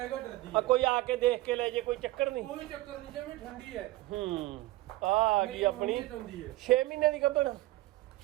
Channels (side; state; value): left; quieter; 18.6 dB